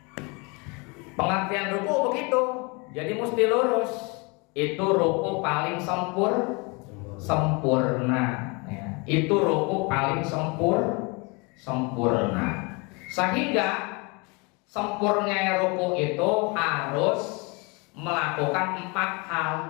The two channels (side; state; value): right; quieter; 29.6 dB